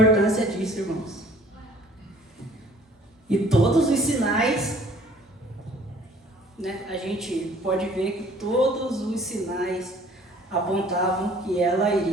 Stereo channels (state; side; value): normal; both; correlation 0.55